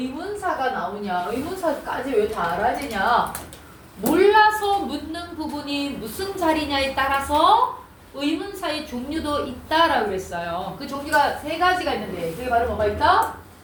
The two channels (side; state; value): both; identical; correlation 1.00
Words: 나오냐, 의문사까지 왜 다 알아지냐, 몰라서 묻는 부분이 무슨 자리냐에 따라서 의문사의 종류도 있다라고 했어요. 그 종류가 세 가지가 있는데 그게 바로 뭐가 있다?